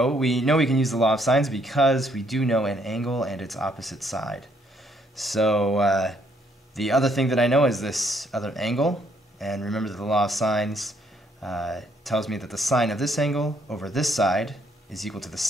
We know we can use the law of sines because we do know an angle and its opposite side. So the other thing that I know is this other angle, and remember that the law of sines tells me that the sine of this angle over this side is equal to the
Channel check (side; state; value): both; normal; correlation 0.69